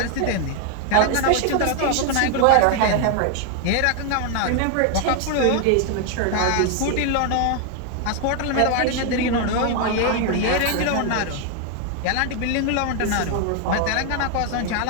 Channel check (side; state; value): both; different; correlation 0.00